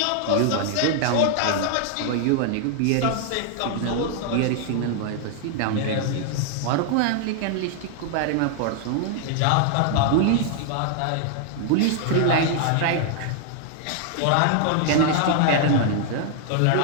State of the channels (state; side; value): different; both; correlation 0.00